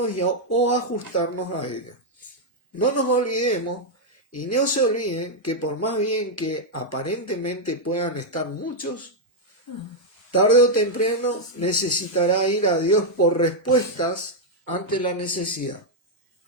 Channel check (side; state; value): both; normal; correlation -0.02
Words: o ajustarnos a ella. No nos olvidemos y no se olviden que por más bien que aparentemente puedan estar muchos, tarde o temprano necesitará ir a Dios por respuestas ante la necesidad.